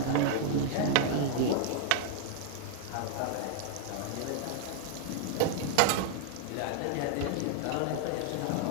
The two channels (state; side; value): different; both; correlation -0.01